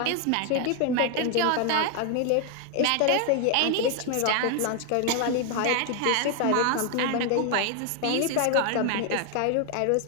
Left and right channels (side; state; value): both; different; correlation 0.01